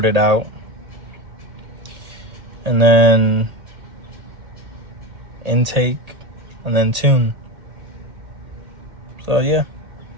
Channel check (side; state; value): left; late; 1.8 ms